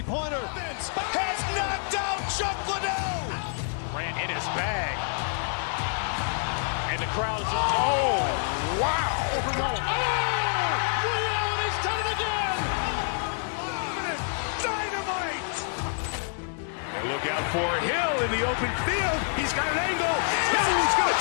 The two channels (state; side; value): silent; right; 60 dB below the other